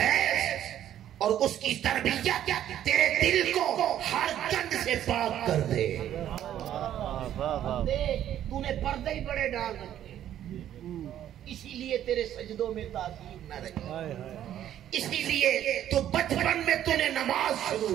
اور اس کی تربیت تیرے دل کو ہر گند سے پاک کر دے. تو نے پردے ہی بڑے ڈال رکھے، اسی لیے تیرے سجدوں میں تاثیر نہ رہی، اسی لیے تو بچپن میں تو نے نماز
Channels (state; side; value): quieter; left; 11.3 dB